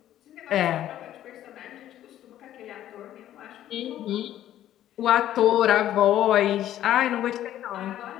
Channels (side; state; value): right; quieter; 12.3 dB